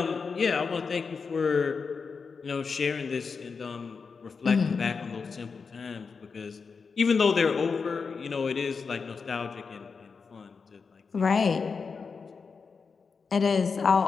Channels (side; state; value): right; quieter; 5.2 dB